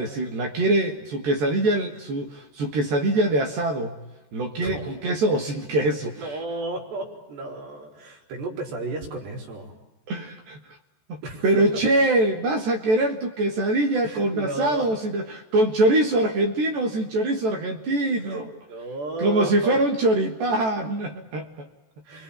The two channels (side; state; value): left; late; 14 ms